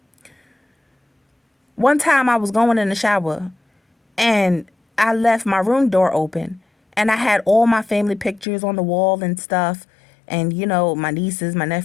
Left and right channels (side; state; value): right; drops out; at 8.5 s